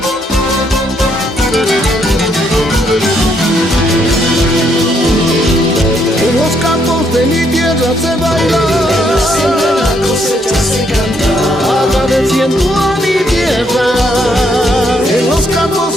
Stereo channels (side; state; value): both; normal; correlation 0.72